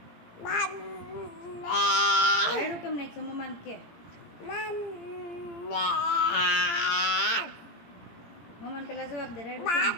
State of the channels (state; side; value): late; right; 18 ms